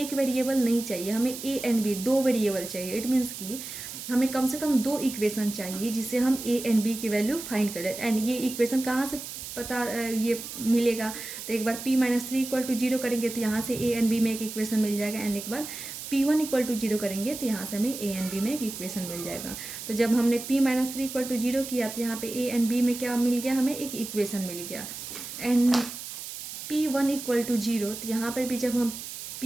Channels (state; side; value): noise; right; hiss, 9 dB below the sound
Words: वेरिएबल नहीं चाहिए, हमें a एंड b 2 वेरिएबल चाहिए। इट मीन्स कि हमें कम से कम 2 इक्वेशन चाहिए जिससे हम a एंड b की वैल्यू फाइंड करें। एंड ये इक्वेशन कहाँ से पता ये मिलेगा, तो एक बार p माइनस 3 इक्वल टू 0 करेंगे तो यहाँ से a एंड b में एक इक्वेशन मिल जाएगा, एंड एक बार p1 इक्वल टू 0 करेंगे तो यहाँ से हमें a एंड b में एक इक्वेशन मिल जाएगा। तो जब हमने p माइनस 3 इक्वल टू 0 किया तो यहाँ पे a एंड b में क्या मिल गया, हमें एक इक्वेशन मिल गया। एंड p1 इक्वल टू 0, तो यहाँ पर भी जब हम